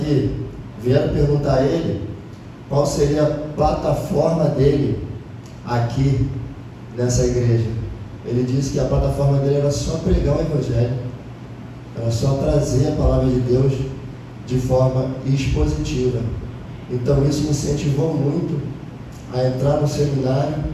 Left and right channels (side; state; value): both; identical; correlation 1.00